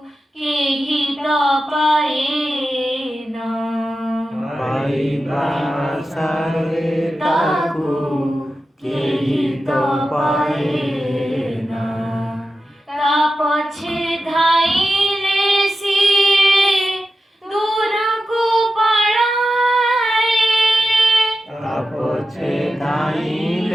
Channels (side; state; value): both; normal; correlation 0.91